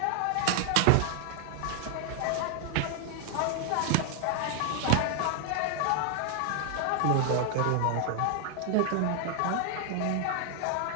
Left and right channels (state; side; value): different; both; correlation 0.00